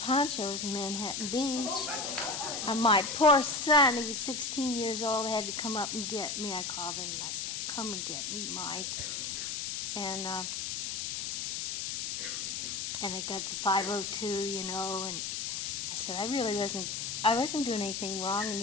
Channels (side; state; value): left; noise; hiss, 3 dB below the sound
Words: in Manhattan Beach. And my poor son, he was 16 years old, had to come up and get me. I called him and I said, "Come and get me, Mike." And I got to 502, you know, and I said, I wasn't doing anything wrong. And